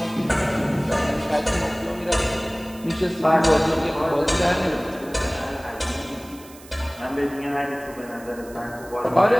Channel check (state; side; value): noise; right; hiss, 21 dB below the sound